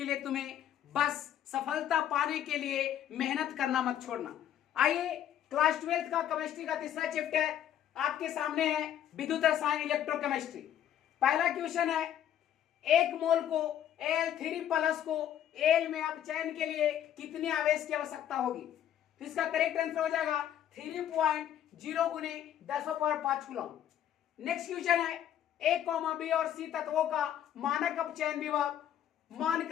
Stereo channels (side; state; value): right; quieter; 10.6 dB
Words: तुम्हें, बस सफलता पाने के लिए मेहनत करना मत छोड़ना। आइए क्लास 12 का केमिस्ट्री का तीसरा चैप्टर आपके सामने है, विद्युत रसायन इलेक्ट्रोकेमिस्ट्री। पहला क्वेश्चन है, एक मोल को Al3+ को एल में अपचयन के लिए कितने आवेश की आवश्यकता होगी? तो इसका करेक्ट आंसर हो जाएगा 3.0 गुने 10⁵ कूलम। नेक्स्ट क्वेश्चन है, ए, बी और सी तत्वों का मानक अपचयन विभव मान